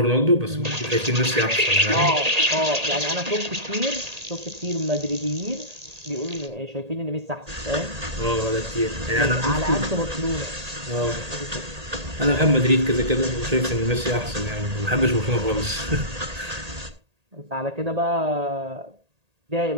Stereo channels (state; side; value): late; left; 1.8 ms